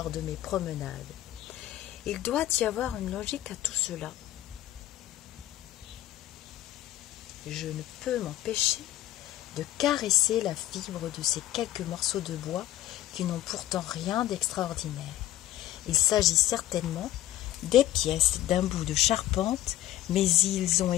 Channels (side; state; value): right; quieter; 13.9 dB